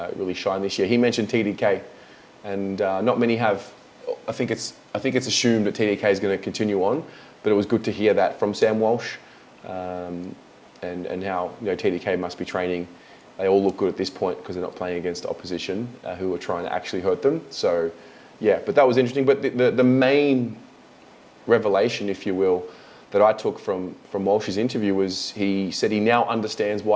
really shine this year, he mentioned TDK, and not many have. I think it's assumed that TDK is going to continue on, but it was good to hear that from Sam Walsh, and how TDK must be training. They all look good at this point because they're not playing against opposition who are trying to actually hurt them. So yeah, but that was interesting. But the main revelation, if you will, that I took from Walsh's interview was he said he now understands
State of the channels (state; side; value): identical; both; correlation 1.00